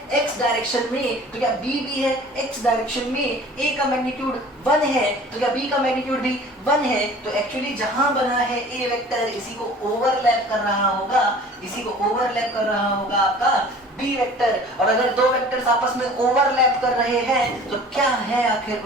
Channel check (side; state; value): both; normal; correlation 0.46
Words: x डायरेक्शन में तो क्या बी भी है x डायरेक्शन में। ए का मैग्नीट्यूड 1 है तो क्या बी का मैग्नीट्यूड भी 1 है। तो एक्चुअली जहां बना है ए वेक्टर इसी को ओवरलैप कर रहा होगा, इसी को ओवरलैप कर रहा होगा आपका बी वेक्टर। और अगर दो वेक्टर्स आपस में ओवरलैप कर रहे हैं तो क्या है आखिर